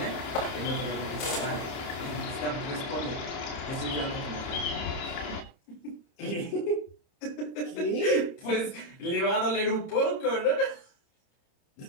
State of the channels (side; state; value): right; late; 30 ms